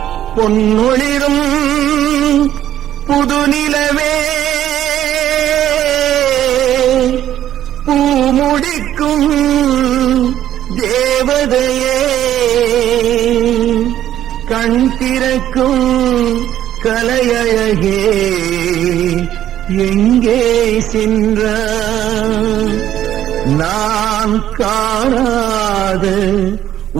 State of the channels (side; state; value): left; quieter; 11.8 dB